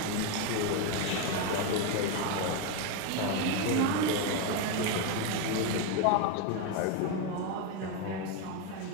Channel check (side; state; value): both; different; correlation 0.02